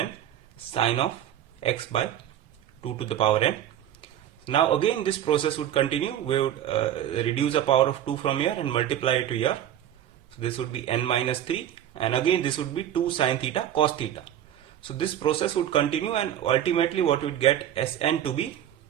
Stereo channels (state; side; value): quieter; left; 11.1 dB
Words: sine of x by 2 to the power n. Now again this process would continue. We would reduce the power of 2 from here and multiply it to here. So this would be n minus 3, and again this would be 2 sine theta cos theta. So this process would continue, and ultimately what we would get Sn to be,